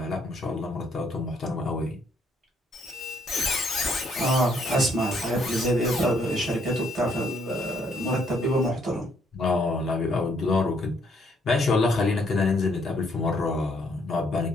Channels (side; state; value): both; normal; correlation 0.69